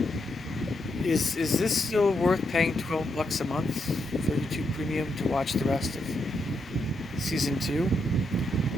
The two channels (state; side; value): normal; both; correlation 0.81